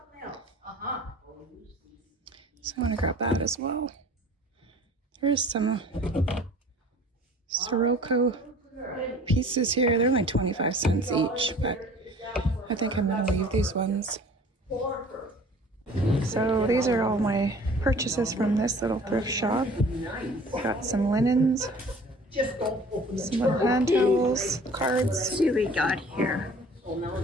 So I want to grab that as well. There's some Sirocco pieces here. They're like 25 cents each, but I think I'm going to leave these ones. So these are all my purchases from this little thrift shop. Got some linens, some little hand towels, cards. Let's see what we got here.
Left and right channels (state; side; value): normal; both; correlation 0.48